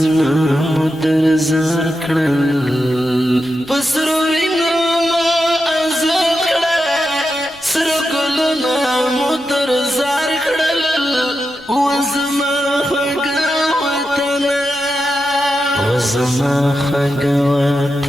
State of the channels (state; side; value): noise; left; rumble, 28 dB below the sound